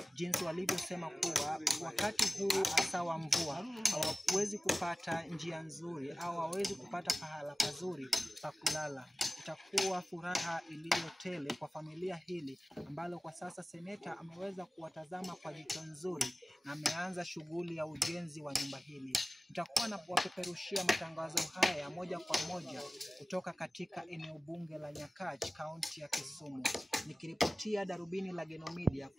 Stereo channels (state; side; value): normal; both; correlation 0.96